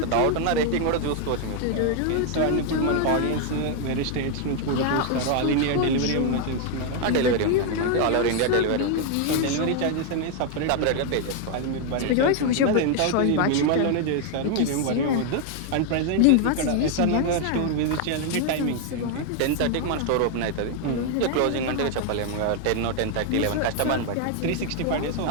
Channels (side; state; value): both; different; correlation 0.01